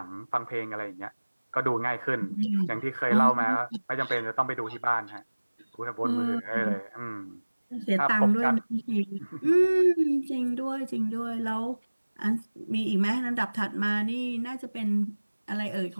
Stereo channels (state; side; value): inverted; both; correlation -1.00